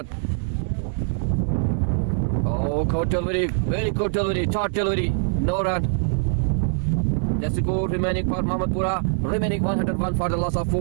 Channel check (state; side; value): silent; left; digital silence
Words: Oh, good delivery. Very good delivery. Short delivery. No run. The score remaining for Mahmudpura. Remaining 101 for the loss of